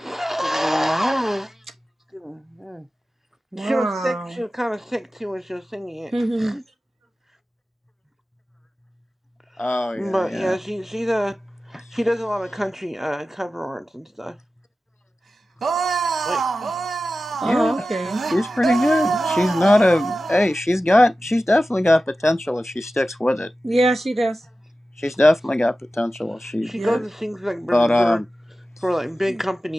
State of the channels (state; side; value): normal; both; correlation 0.94